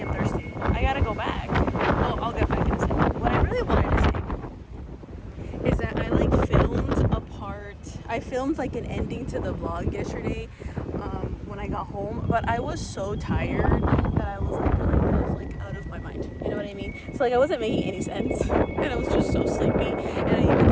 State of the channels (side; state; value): both; identical; correlation 1.00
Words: am thirsty. I gotta go back. Well, I'll get back in a second. What I really wanted to say is that I like filmed a part. I filmed like an ending to the vlog yesterday when I got home, but I was so tired that I was like out of my mind. You know what I mean? So like I wasn't making any sense, and I was just so sleepy. And I even